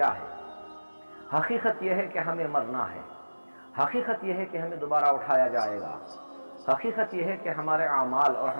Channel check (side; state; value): both; inverted; correlation -1.00